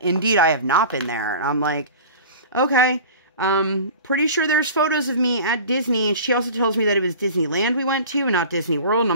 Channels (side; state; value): both; inverted; correlation -0.38